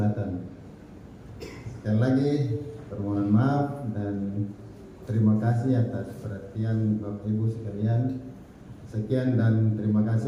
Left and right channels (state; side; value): identical; both; correlation 1.00